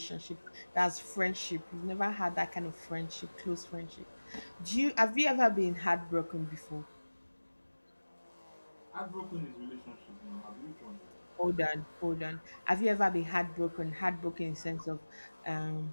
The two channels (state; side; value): inverted; both; correlation -1.00